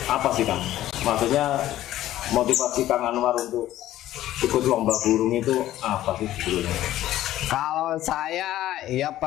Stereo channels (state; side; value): quieter; right; 13.9 dB